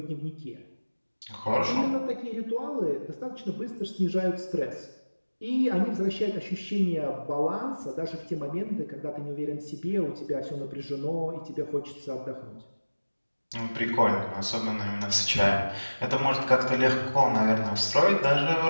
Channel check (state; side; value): inverted; both; correlation -1.00